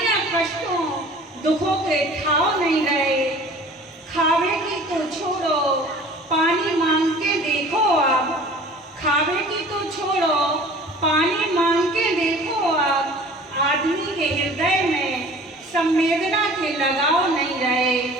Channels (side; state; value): both; normal; correlation 0.46